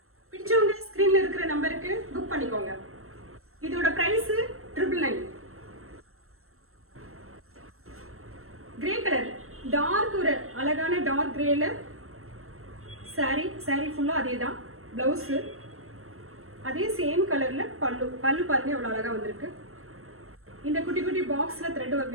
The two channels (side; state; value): left; late; 0.62 ms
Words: பிடிச்சவங்க ஸ்கிரீன்ல இருக்கிற நம்பருக்கு புக் பண்ணிக்கோங்க. இதோட பிரைஸ் 999. கிரே கலர், டார்க், ஒரு அழகான டார்க் கிரேல சாரி ஃபுல்லா அதே தான். பிளவுஸ் அதே சேம் கலர்ல பல்லு. பல்லு பாருங்க எவ்வளவு அழகா வந்திருக்கு. இந்த குட்டி குட்டி பாக்ஸ்ல த்ரெட்